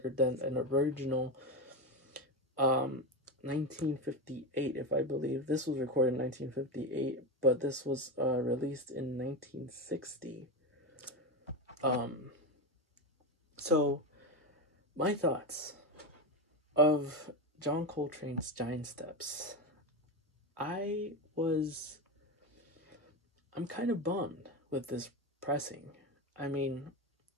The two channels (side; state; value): both; normal; correlation 0.16